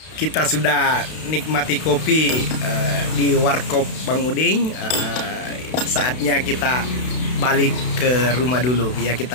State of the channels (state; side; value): late; right; 32 ms